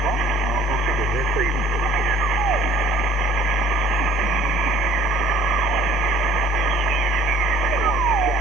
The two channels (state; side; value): noise; left; hum, 18 dB below the sound